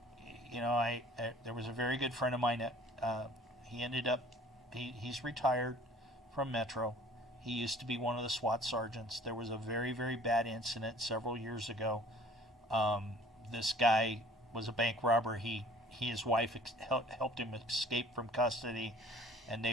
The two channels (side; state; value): both; normal; correlation 0.51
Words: there was a very good friend of mine that he ended up he's retired from Metro. He used to be one of the SWAT sergeants. There was a very, very bad incident several years ago. This guy was a bank robber. His wife helped him escape from custody, and